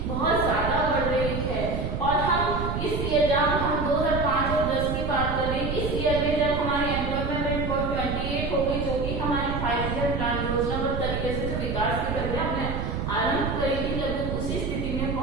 बहुत ज्यादा बढ़ रही है, और हम इस ईयर जब हम 2005 और 10 की बात करें, इस ईयर में जब हमारी एम्प्लॉयमेंट रेट 28 हो गई, जो कि हमारी 5 ईयर प्लान योजनाबद्ध तरीके से जो विकास की प्रक्रिया हमने आरंभ करी थी, लगभग उसी स्थिति में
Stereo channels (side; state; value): right; noise; rumble, 3 dB below the sound